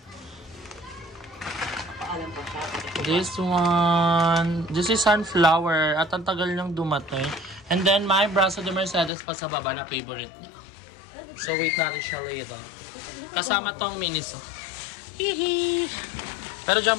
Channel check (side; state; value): right; drops out; at 9.1 s